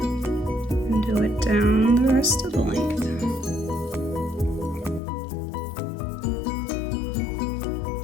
and do it down the rest of the length.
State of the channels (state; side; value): drops out; right; at 5.0 s